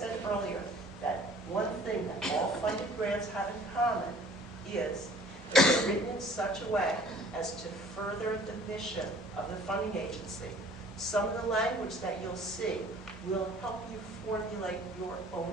earlier, that one thing that all funded grants have in common is that they're written in such a way as to further the mission of the funding agency. Some of the language that you'll see will help you formulate your own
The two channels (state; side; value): normal; both; correlation 0.52